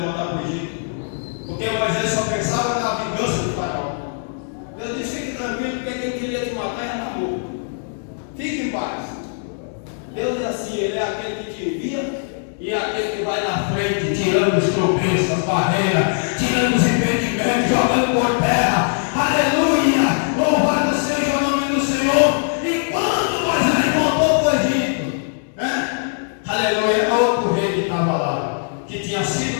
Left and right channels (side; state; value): right; silent; digital silence